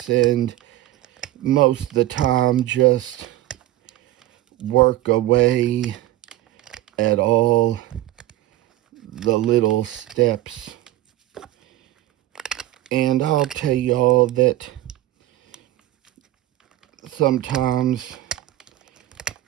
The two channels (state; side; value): quieter; left; 15.0 dB